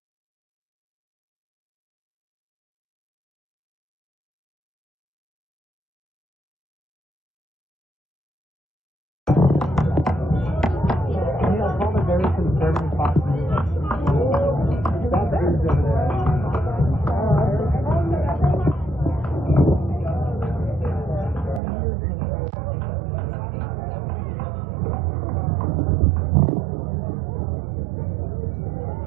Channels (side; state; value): left; drops out; at 21.6 s